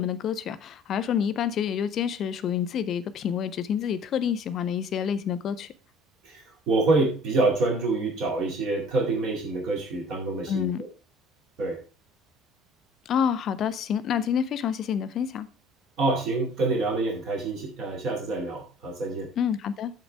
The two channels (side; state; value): both; normal; correlation 0.50